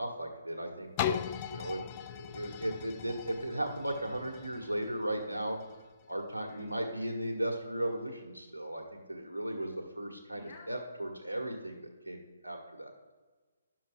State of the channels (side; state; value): both; inverted; correlation -0.79